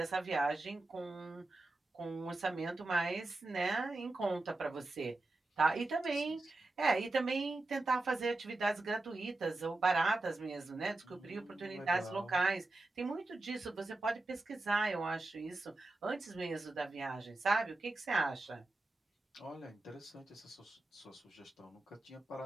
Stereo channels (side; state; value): left; quieter; 3.0 dB